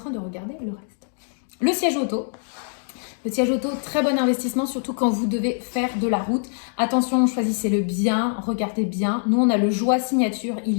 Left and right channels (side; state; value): right; silent; digital silence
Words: de regarder le reste. Le siège auto. Le siège auto, très bon investissement, surtout quand vous devez faire de la route. Attention, choisissez-le bien, regardez bien. Nous, on a le Joie Signature,